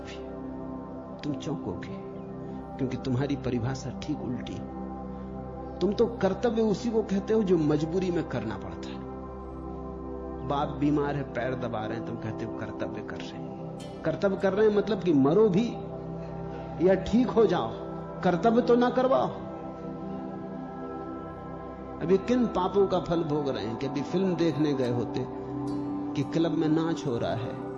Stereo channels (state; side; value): identical; both; correlation 1.00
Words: तुम चौंकोगे क्योंकि तुम्हारी परिभाषा ठीक उल्टी। तुम तो कर्तव्य उसी को कहते हो जो मजबूरी में करना पड़ता है। बाप बीमार है, पैर दबा रहे हैं, तुम कहते हो कर्तव्य कर रहे हैं। कर्तव्य कर रहे हैं मतलब कि मरो भी या ठीक हो जाओ, कर्तव्य तो ना करवाओ। अभी किन पापों का फल भोग रहे हैं कि अभी फिल्म देखने गए होते कि क्लब में नाच हो रहा है,